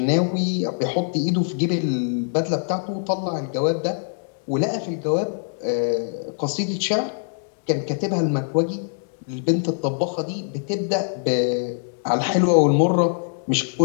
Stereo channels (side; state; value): right; silent; digital silence